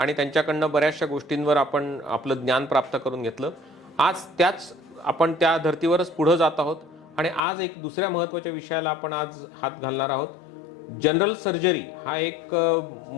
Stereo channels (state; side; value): drops out; right; at 7.5 s